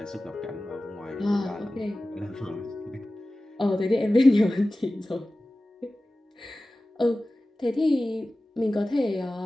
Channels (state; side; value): normal; both; correlation 0.96